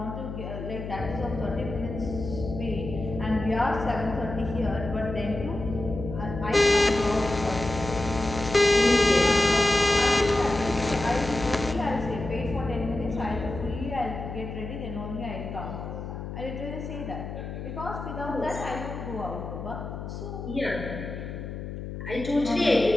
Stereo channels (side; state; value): left; noise; hum, 8 dB below the sound